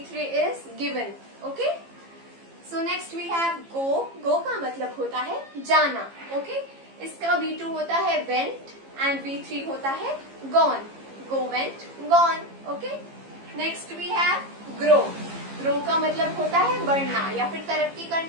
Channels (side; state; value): left; late; 15 ms